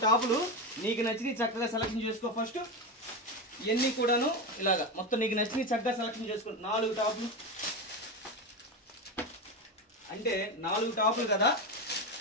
టాపులు నీకు నచ్చినవి చక్కగా సెలక్షన్ చేసుకో. ఫస్ట్ ఇవన్నీ కూడాను ఇలాగా మొత్తం నీకు నచ్చినవి చక్కగా సెలక్షన్ చేసుకో. 4 టాపులు అంటే 4 టాపులు కదా,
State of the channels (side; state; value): both; normal; correlation 0.17